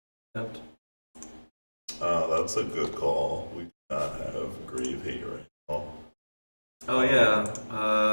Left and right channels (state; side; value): inverted; both; correlation -1.00